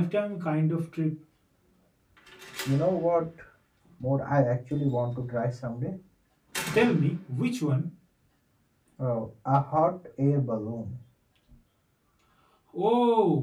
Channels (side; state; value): both; identical; correlation 1.00